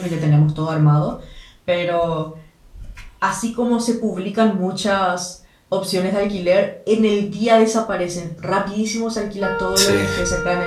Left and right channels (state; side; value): identical; both; correlation 1.00